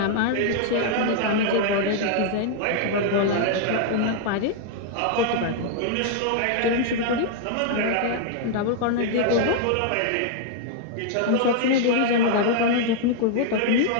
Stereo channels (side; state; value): both; different; correlation 0.00